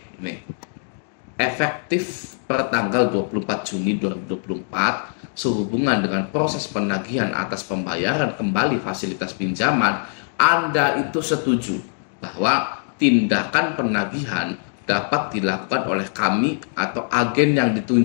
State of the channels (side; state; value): right; silent; 64 dB below the other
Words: Nih. Efektif per tanggal 24 Juni 2024 sehubungan dengan proses penagihan atas pembayaran kembali fasilitas pinjaman, Anda itu setuju bahwa tindakan penagihan dapat dilakukan oleh kami atau agen yang